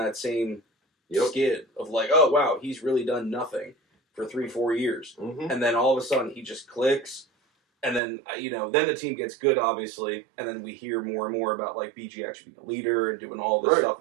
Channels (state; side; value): drops out; left; at 8.0 s